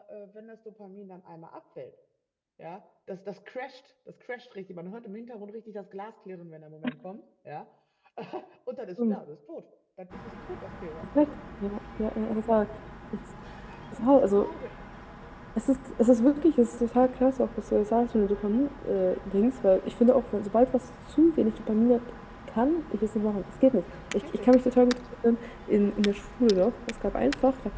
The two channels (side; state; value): both; identical; correlation 1.00